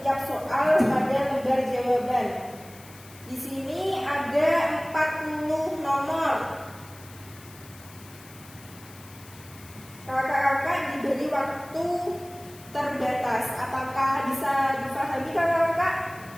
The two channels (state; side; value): noise; left; hiss, 21 dB below the sound